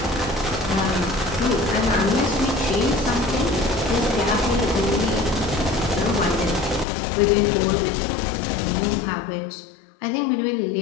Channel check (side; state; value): right; drops out; at 6.9 s